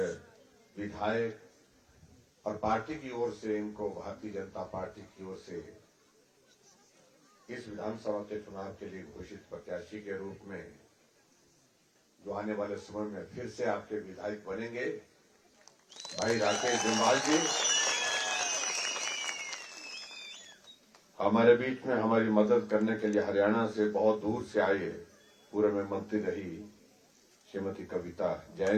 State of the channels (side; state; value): both; identical; correlation 1.00